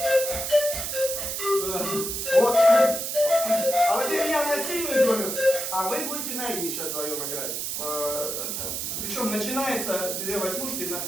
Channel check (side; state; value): right; noise; hiss, 3 dB below the sound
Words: Вот. А вот теперь я на сильную долю, а вы будете на «и» сейчас вдвоем играть. Причем начинается две восьмушки